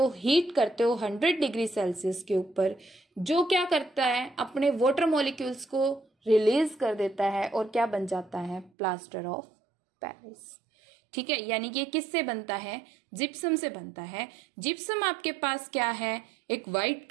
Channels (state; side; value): drops out; left; at 8.7 s